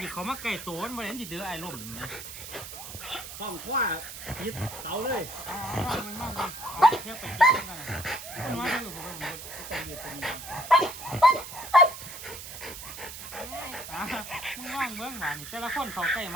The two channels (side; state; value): right; noise; hiss, 11 dB below the sound